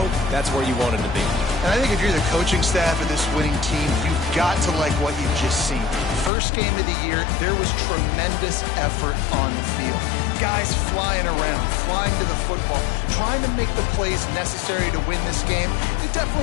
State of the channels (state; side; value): drops out; right; at 6.3 s